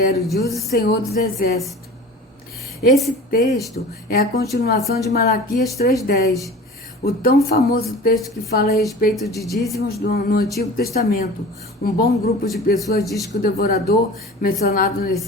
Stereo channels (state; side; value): normal; both; correlation 0.39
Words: diz o Senhor dos Exércitos. Esse texto é a continuação de Malaquias 3,10. O tão famoso texto que fala a respeito de dízimos no Antigo Testamento. Um bom grupo de pessoas diz que o devorador mencionado